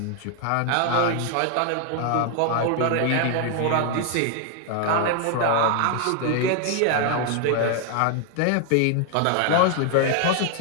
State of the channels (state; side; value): different; both; correlation 0.00